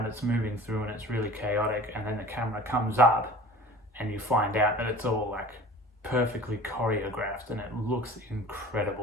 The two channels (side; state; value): both; normal; correlation 0.41